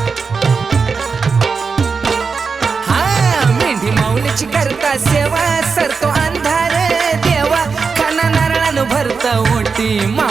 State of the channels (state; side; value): quieter; left; 5.1 dB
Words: मेंढी माऊलीची करता सेवा सरतो अंधार देवा खाना नारळानं भरत ओटी